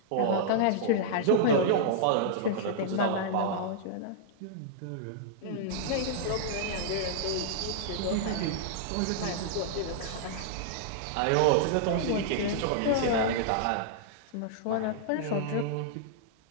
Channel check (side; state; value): both; different; correlation -0.01